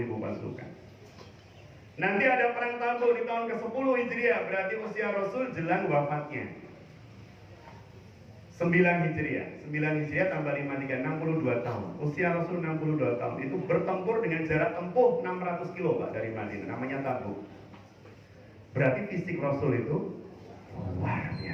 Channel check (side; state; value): both; identical; correlation 1.00